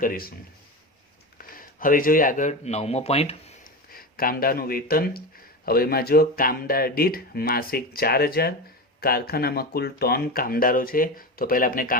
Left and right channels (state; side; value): normal; both; correlation 0.23